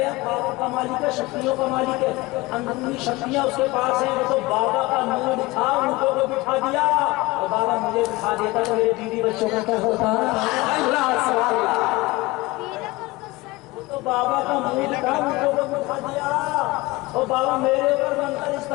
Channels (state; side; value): quieter; right; 21.5 dB